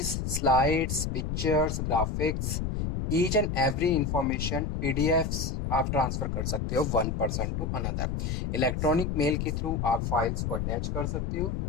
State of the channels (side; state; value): left; noise; rumble, 1 dB below the sound